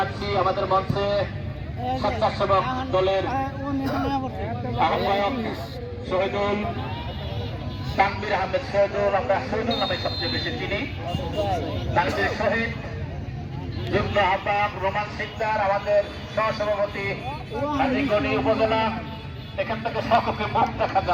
আমাদের মঞ্চে স্বেচ্ছাসেবক দলের আহ্বায়ক শহীদুল তানভীর আহমেদ শহীদুল, আমরা শহীদুল নামে সবচেয়ে বেশি চিনি। তানভীর শহীদ, যুগ্ম আহ্বায়ক রোমান সিকদার, আমাদের সহসভাপতি হাজীগঞ্জ উপজেলা। এখান থেকে সকলকে মুখ দেখা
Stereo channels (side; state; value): both; identical; correlation 1.00